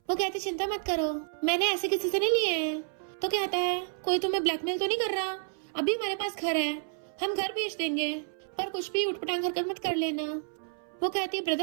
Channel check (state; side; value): silent; left; 58 dB below the other